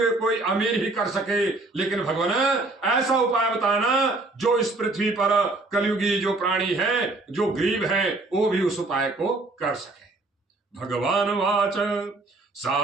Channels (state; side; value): quieter; left; 3.1 dB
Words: कोई अमीर ही कर सके, लेकिन भगवान ऐसा उपाय बताना जो इस पृथ्वी पर कलयुगी जो प्राणी है, जो गरीब है, वो भी उस उपाय को कर सके। भगवान वाच